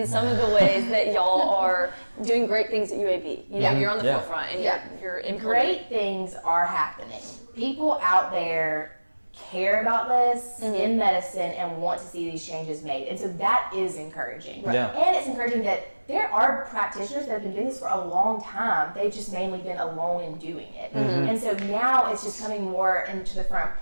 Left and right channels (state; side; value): inverted; both; correlation -1.00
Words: some of the ways that y'all are doing great things at UAB. You're on the forefront and you're great things are happening. People out there care about this in medicine and want to see these changes made. And so that is encouraging. And it's encouraging that there are practitioners that have been doing this for a long time. They've just mainly been alone in doing it. And so now it's just coming more into the